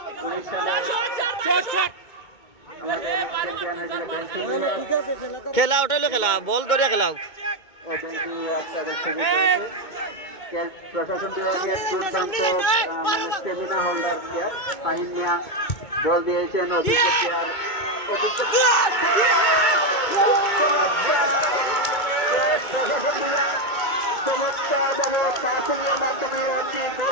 19 সালে খেলা ওটাইলো, খেলা বল ধরে খেলাও, প্রশাসন বিভাগের দুর্দান্ত স্টেমিনা হোল্ডার প্লেয়ার ফাহিম মিয়া বল দিয়েছেন অভিজ্ঞ প্লেয়ার চমৎকারভাবে পাসিংয়ের মাধ্যমে একটি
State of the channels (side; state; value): right; late; 2.2 ms